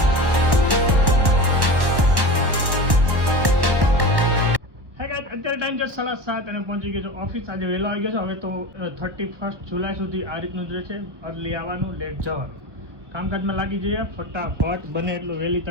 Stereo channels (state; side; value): late; left; 1.1 ms